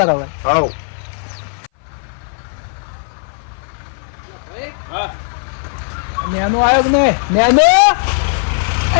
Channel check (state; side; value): silent; right; 58 dB below the other